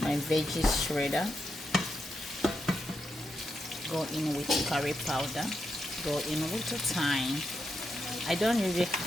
veggie shredder. Go in with curry powder. Go in with the thyme. I don't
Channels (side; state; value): both; normal; correlation 0.85